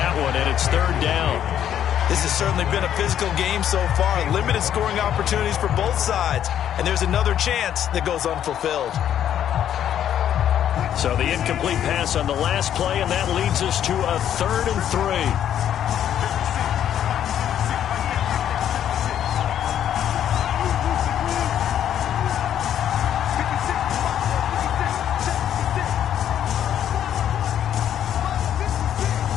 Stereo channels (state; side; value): quieter; right; 10.2 dB